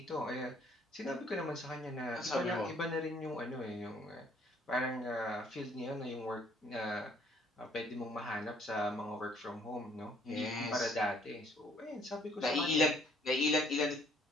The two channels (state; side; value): normal; both; correlation 0.62